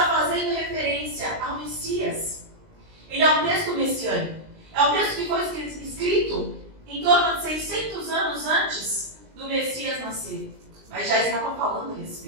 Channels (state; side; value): late; left; 19 ms